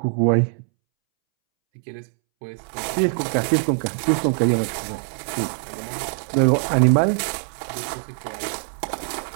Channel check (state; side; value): silent; left; 64 dB below the other